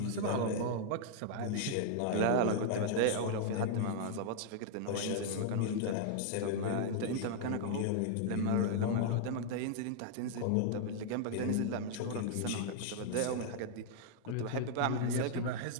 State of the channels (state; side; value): different; both; correlation -0.01